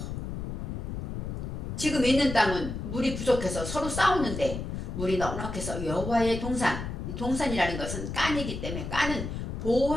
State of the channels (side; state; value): left; noise; rumble, 5 dB below the sound